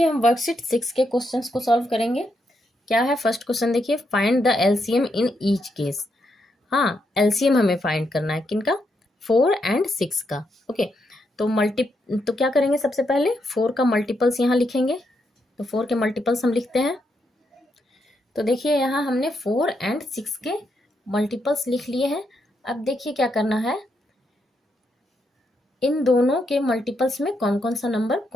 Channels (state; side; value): normal; both; correlation 0.80